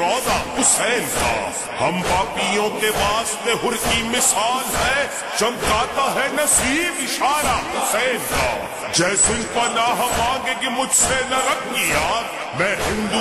حسین کا ہم پاپیوں کے واسطے ہر کی مثال ہے چمکاتا ہے نصیب اشارہ حسین کا جیسے پناہ مانگے گی مجھ سے نہ رکھ یاد میں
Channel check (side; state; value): both; identical; correlation 1.00